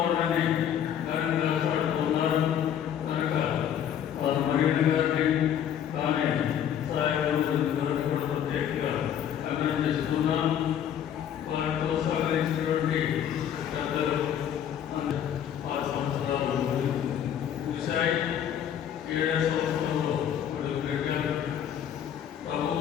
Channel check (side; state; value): right; quieter; 9.5 dB